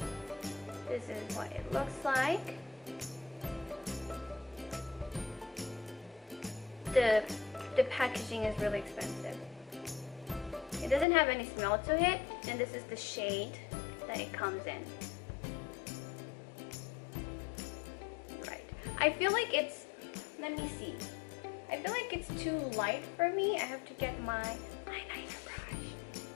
this is what it looks like. The packaging is really expensive. It doesn't have any smell to it, and this is the shade that it comes in. Right. I feel like it's, let me see. I feel like it's too light for me. I have to get my eyeliner brush.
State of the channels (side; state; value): right; drops out; at 11.1 s